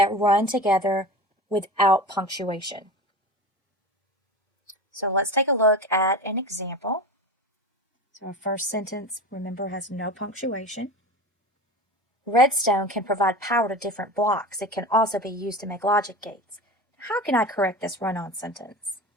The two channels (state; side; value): normal; both; correlation 0.31